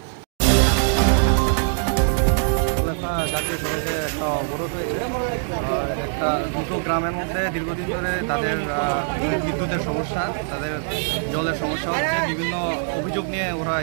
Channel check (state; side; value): silent; left; digital silence